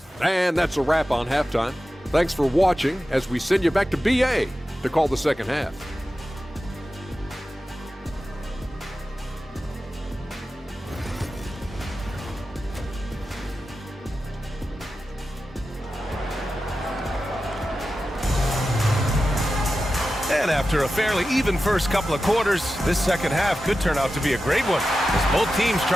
And that's a wrap on halftime. Thanks for watching as we send you back to BA to call the second half. And after a fairly even first couple of quarters, this second half could turn out to be a great one as both teams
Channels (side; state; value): both; normal; correlation 0.93